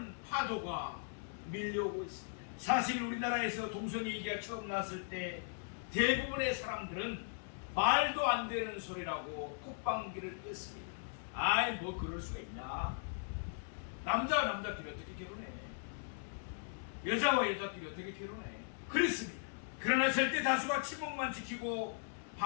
파도가 밀려오고 있습니다. 사실 우리나라에서 동성애 얘기가 처음 나왔을 때 대부분의 사람들은 말도 안 되는 소리라고 콧방귀를 뀌었습니다. 아이 뭐 그럴 수가 있나. 남자와 남자끼리 어떻게 결혼해. 여자와 여자끼리 어떻게 결혼해. 그랬습니다. 그러나 절대 다수가 침묵만 지키고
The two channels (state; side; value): silent; right; digital silence